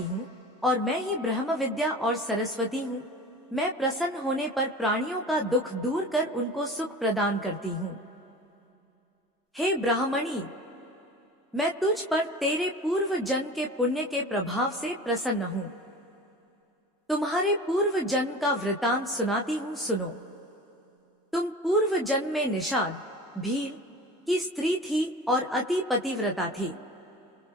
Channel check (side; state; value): both; normal; correlation 0.36